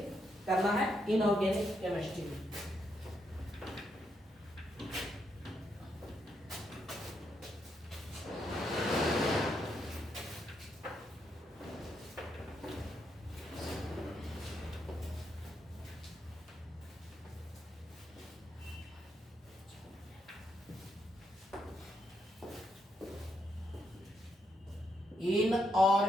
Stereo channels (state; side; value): normal; both; correlation 0.79